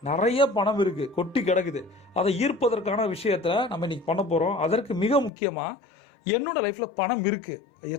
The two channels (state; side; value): drops out; right; at 5.3 s